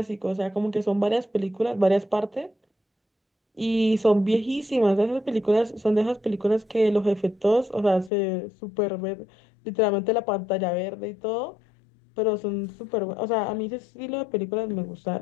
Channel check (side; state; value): right; drops out; at 8.1 s